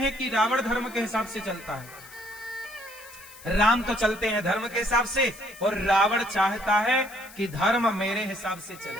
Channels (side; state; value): left; noise; hiss, 19 dB below the sound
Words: कि रावण धर्म के हिसाब से चलता है? राम तो चलते हैं धर्म के हिसाब से और रावण चाहता है कि धर्म मेरे हिसाब से चले,